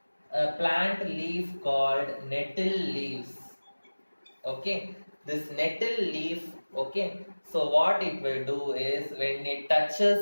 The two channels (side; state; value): both; inverted; correlation -1.00